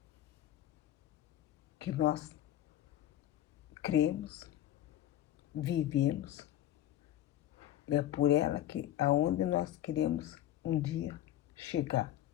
que nós cremos, vivemos, e é por ela que aonde nós queremos um dia chegar,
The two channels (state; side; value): quieter; right; 12.6 dB